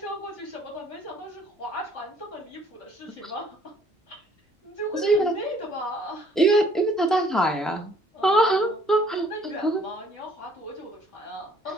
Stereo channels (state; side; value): normal; both; correlation 0.60